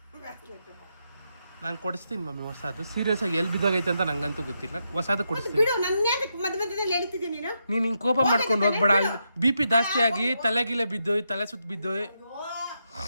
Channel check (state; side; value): inverted; both; correlation -0.83